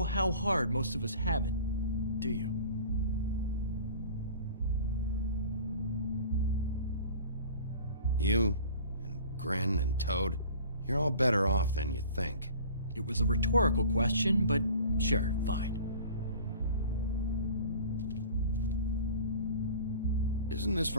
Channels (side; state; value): both; inverted; correlation -0.43